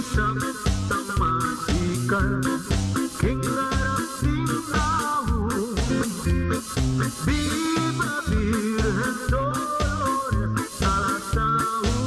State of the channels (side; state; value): both; identical; correlation 1.00